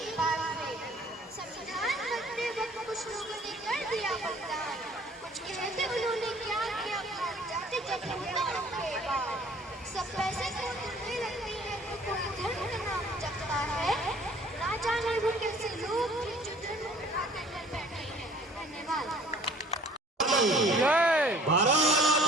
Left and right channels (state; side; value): normal; both; correlation 0.53